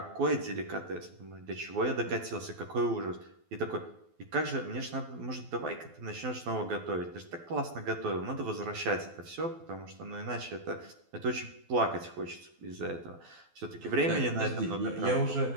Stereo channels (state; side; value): late; left; 12 ms